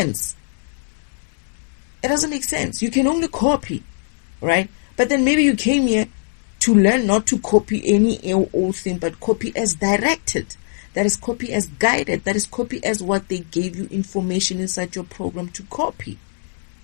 It doesn't make sense. You can only copy, right? But then maybe you came here to learn not to copy any old thing, but copy as directed. That is copy as guided. That is copy as what they gave you information inside your program to copy.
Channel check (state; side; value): silent; right; digital silence